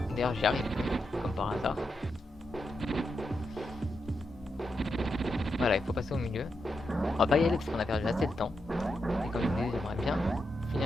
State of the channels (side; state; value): both; normal; correlation 0.85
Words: D'ailleurs j'y arrive, comme par hasard. Voilà, il faut passer au milieu. On va pas y aller parce qu'on a perdu assez de temps. Et comme je vous disais, j'aimerais bien